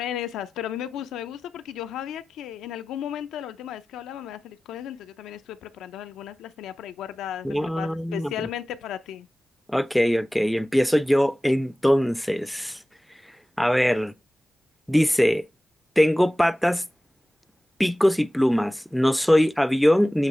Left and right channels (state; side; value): normal; both; correlation 0.96